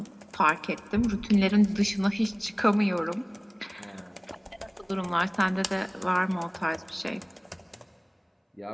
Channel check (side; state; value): both; identical; correlation 1.00